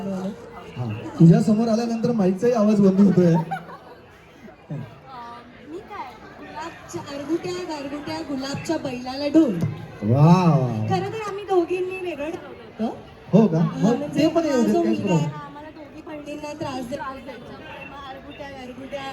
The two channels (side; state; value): both; identical; correlation 1.00